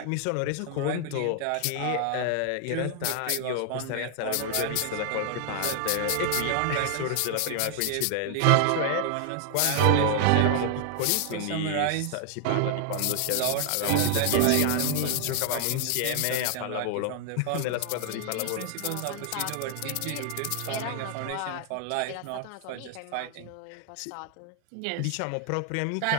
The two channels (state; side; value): different; both; correlation 0.00